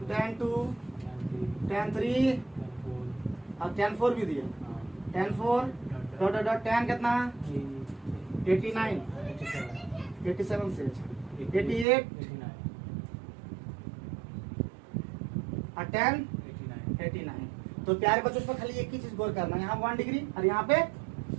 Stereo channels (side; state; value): left; drops out; at 11.9 s